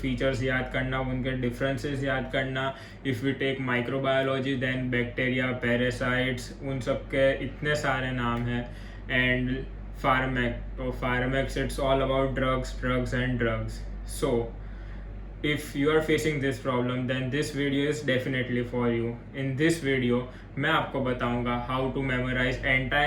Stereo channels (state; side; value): identical; both; correlation 1.00